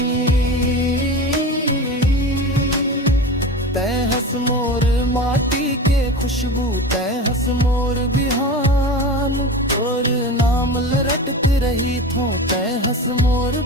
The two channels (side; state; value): both; normal; correlation 0.30